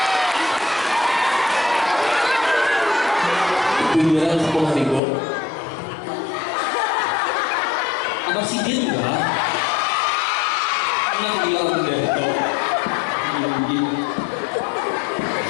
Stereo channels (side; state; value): right; drops out; at 5.0 s